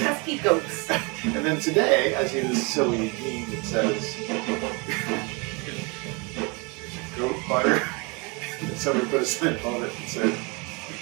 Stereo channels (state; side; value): quieter; left; 29.5 dB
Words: goats. And then today, I see this silly meme that says, "Goat butter." And somebody put a sign on it and said,